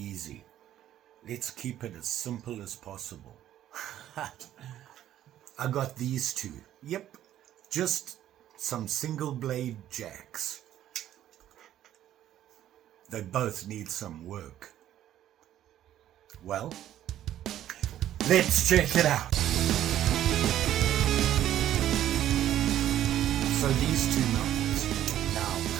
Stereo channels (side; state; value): left; quieter; 12.0 dB